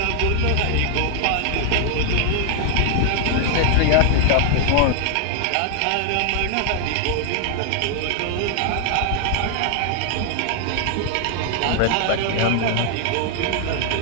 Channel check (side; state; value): both; different; correlation 0.00